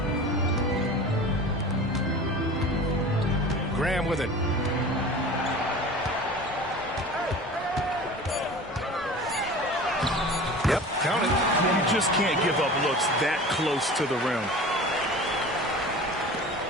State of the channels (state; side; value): normal; both; correlation 0.38